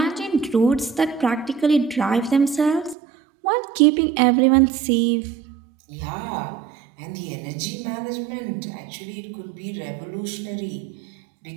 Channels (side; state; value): left; drops out; at 3.0 s